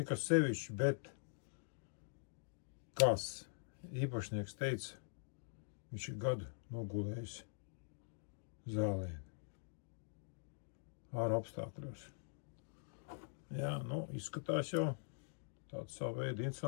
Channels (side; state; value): right; silent; digital silence